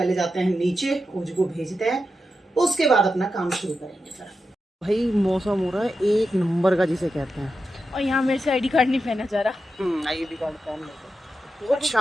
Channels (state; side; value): normal; both; correlation 0.89